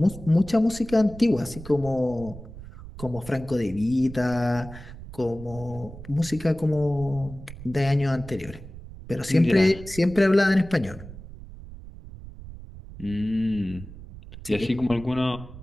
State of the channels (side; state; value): right; noise; rumble, 15 dB below the sound